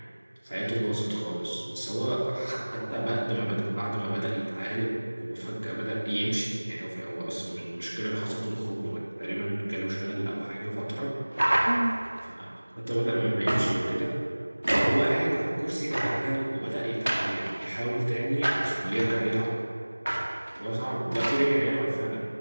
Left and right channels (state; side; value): inverted; both; correlation -1.00